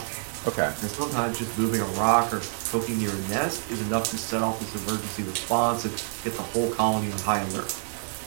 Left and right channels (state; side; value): silent; left; digital silence